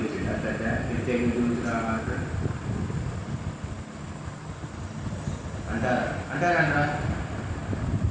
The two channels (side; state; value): both; identical; correlation 1.00